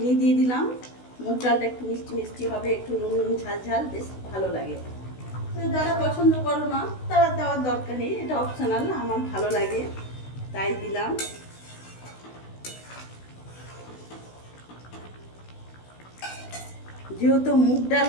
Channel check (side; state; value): right; late; 16 ms